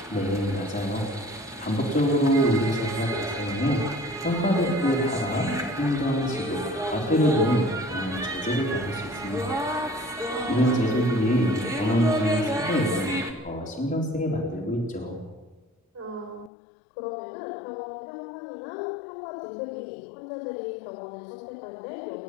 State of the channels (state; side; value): drops out; right; at 16.5 s